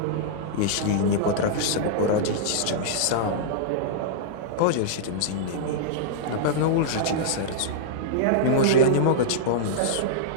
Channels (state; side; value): different; both; correlation -0.02